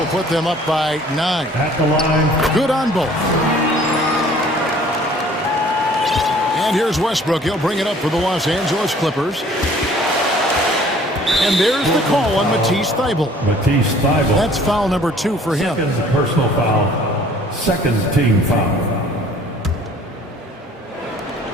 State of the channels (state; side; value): normal; both; correlation 0.54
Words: put them up by 9. At the line. Good on both. And here's Westbrook. He'll bring it up for the Los Angeles Clippers. And there's the call on Matisse Thybulle. Matisse Thybulle. That's foul number 2 for him. Second personal foul. Second team foul.